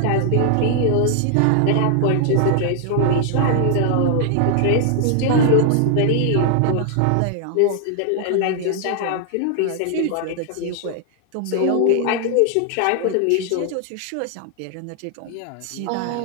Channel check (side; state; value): both; different; correlation 0.00